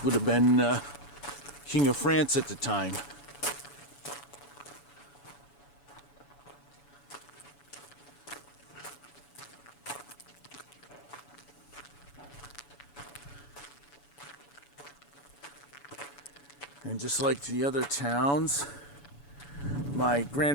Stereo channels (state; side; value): late; right; 7.0 ms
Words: would have been King of France at the time. And just like the other towns, my